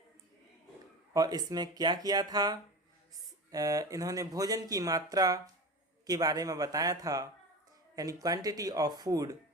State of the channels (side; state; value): both; normal; correlation 0.29